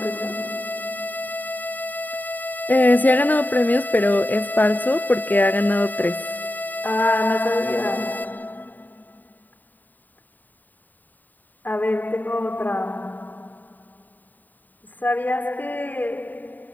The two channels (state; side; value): late; right; 0.087 ms